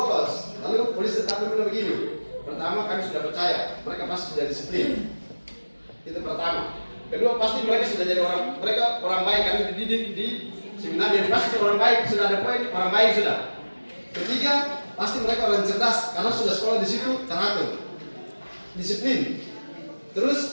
Lalu polisi tentara bilang begini, pertama kami sudah percaya mereka pasti sudah disiplin. Itu pertama. Kedua, pasti mereka sudah jadi orang baik, kami dididik di seminar, jadi pasti orang baik, sudah ada poin orang baik sudah. Ketiga, pasti mereka orang cerdas karena sudah sekolah di situ teratur, disiplin.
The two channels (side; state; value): both; inverted; correlation -1.00